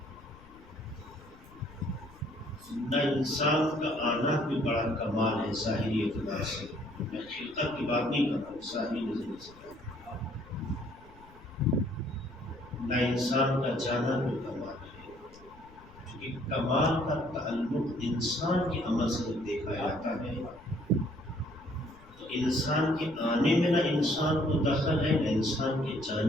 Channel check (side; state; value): left; noise; rumble, 22 dB below the sound